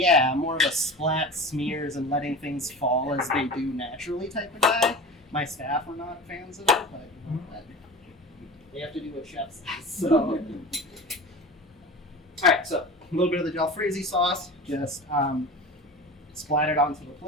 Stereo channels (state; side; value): normal; both; correlation 0.33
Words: I'm more of a splat smears and letting things fall as they do naturally type of guy. My staff are not fans of it, but you know, they have to do what chefs do. So, all right, so a little bit of the jalfrezi sauce, just splat it onto the